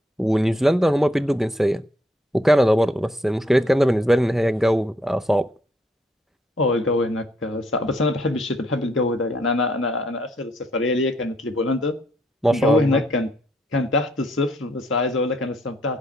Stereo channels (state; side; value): normal; both; correlation 0.71